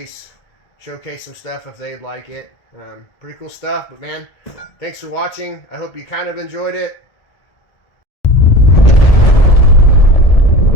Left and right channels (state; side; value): late; right; 1.7 ms